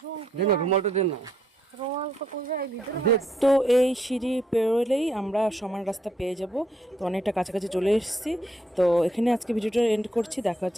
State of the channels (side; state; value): both; normal; correlation 0.73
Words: দে না রুমালটা দে না। তো এই সিঁড়ি পেরোলেই আমরা সমান রাস্তা পেয়ে যাব। তো অনেকটা কাছাকাছি চলে এসেছি। তো এখানে আজকে ভিডিওটা এন্ড করছি, দেখা